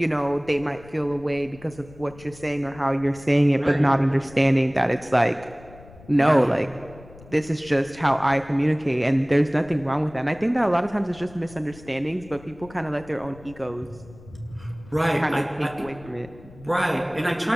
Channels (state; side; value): noise; left; rumble, 21 dB below the sound